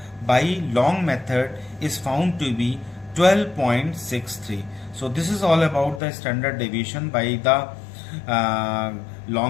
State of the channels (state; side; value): drops out; right; at 6.0 s